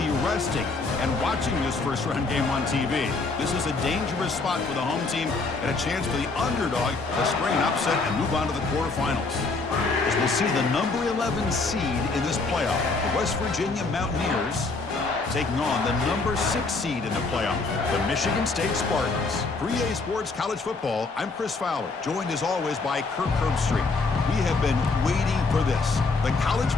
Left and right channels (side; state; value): right; quieter; 3.9 dB